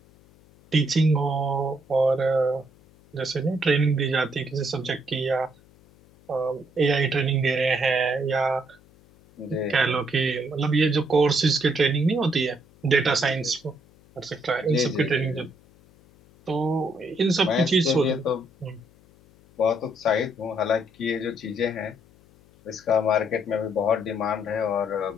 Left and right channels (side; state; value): left; noise; hum, 28 dB below the sound